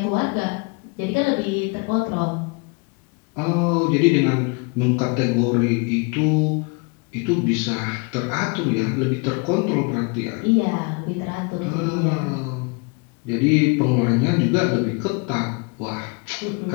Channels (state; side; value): quieter; right; 30.7 dB